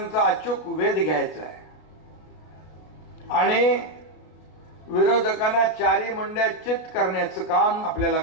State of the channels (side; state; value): right; late; 33 ms